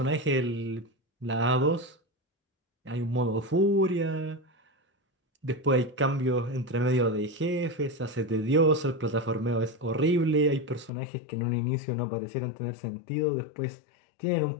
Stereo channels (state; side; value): drops out; right; at 10.9 s